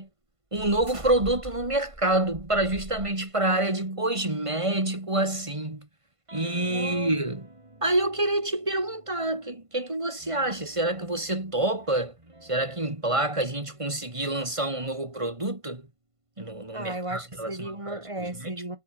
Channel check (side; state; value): left; late; 1.5 ms